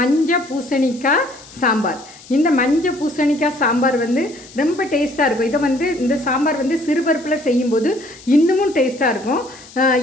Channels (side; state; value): left; noise; hiss, 21 dB below the sound